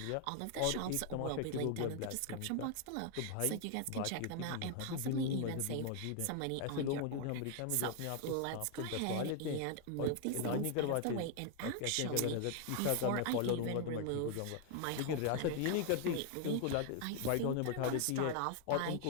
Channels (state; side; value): different; both; correlation 0.00